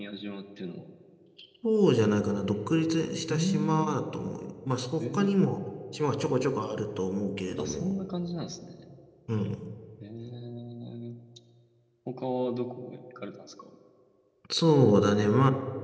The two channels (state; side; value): identical; both; correlation 1.00